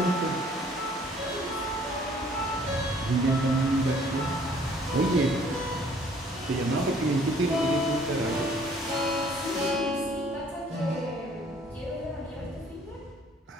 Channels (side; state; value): both; normal; correlation 0.58